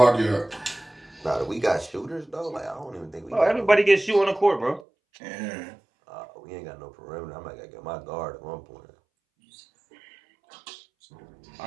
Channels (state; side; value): drops out; left; at 4.9 s